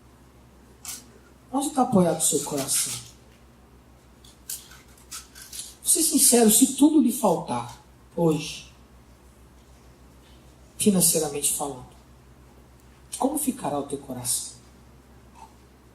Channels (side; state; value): both; identical; correlation 1.00